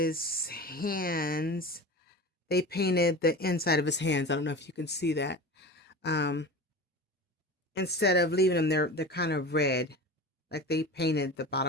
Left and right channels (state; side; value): normal; both; correlation 0.32